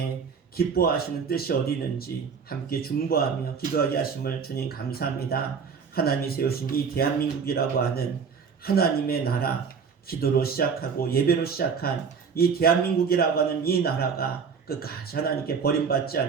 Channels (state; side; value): quieter; left; 6.0 dB